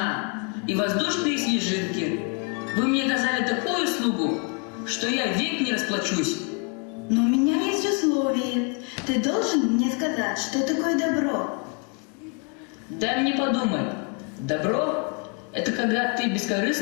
и воздушные снежинки. Вы мне оказали такую услугу, что я век не расплачусь. Но у меня есть условие. Ты должен мне сказать, что такое добро. Дай мне подумать. Добро – это когда ты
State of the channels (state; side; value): quieter; right; 35.4 dB